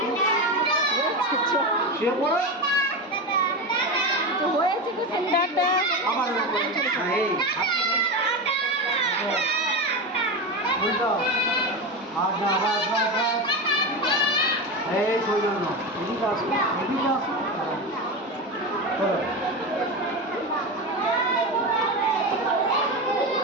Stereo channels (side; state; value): both; normal; correlation 0.19